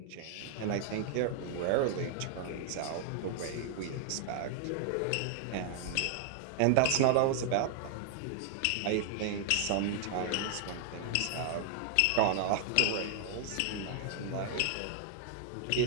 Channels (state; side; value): different; both; correlation 0.00